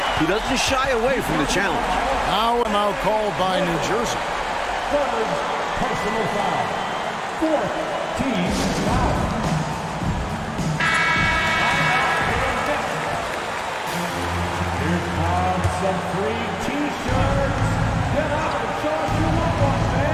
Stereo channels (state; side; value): identical; both; correlation 1.00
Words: He doesn't shy away from the challenge. Now and now called by New Jersey. Third personal foul. Fourth team foul. Here comes some free T-shirts. Get out and show us your love one,